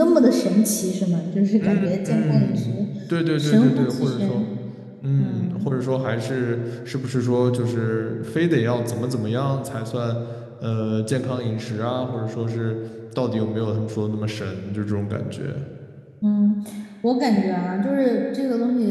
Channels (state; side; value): identical; both; correlation 1.00